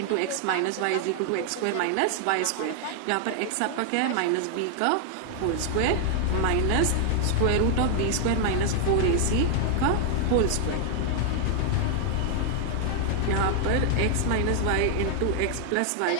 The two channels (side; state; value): both; different; correlation 0.00